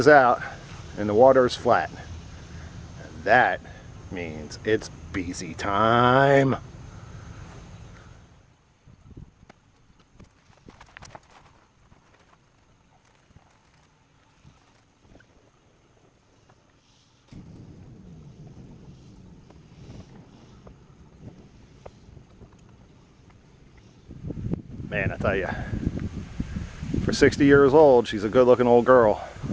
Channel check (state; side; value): identical; both; correlation 1.00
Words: out, and the water is flat. And that means it's Biese time. Man, I tell you, for 60 years old, she's a good-looking old girl.